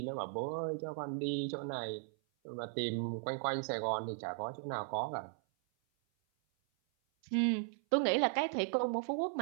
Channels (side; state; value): left; silent; 53 dB below the other